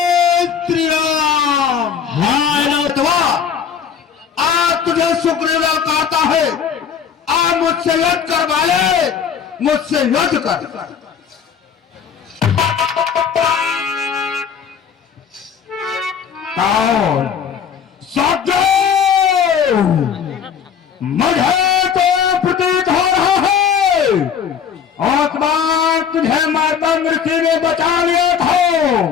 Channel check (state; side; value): quieter; right; 7.6 dB